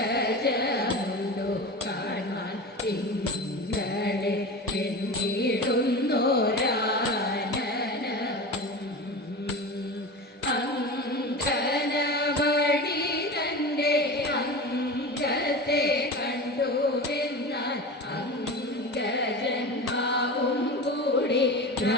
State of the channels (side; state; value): both; normal; correlation 0.29